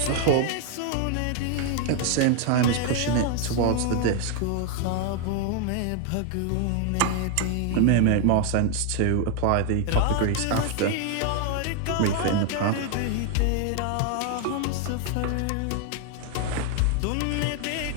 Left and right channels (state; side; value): different; both; correlation 0.00